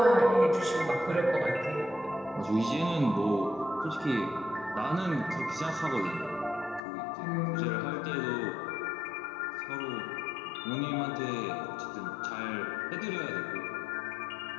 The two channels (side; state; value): right; drops out; at 6.8 s